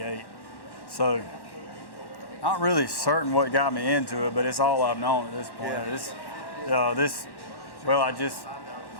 So, not really certain what got me into it, but it's all I've known at this point. Yeah.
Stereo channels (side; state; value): right; late; 1.1 ms